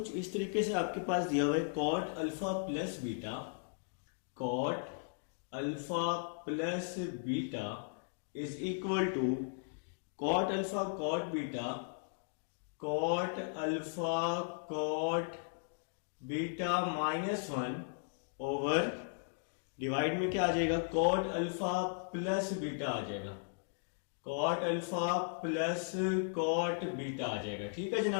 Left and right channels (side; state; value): right; silent; digital silence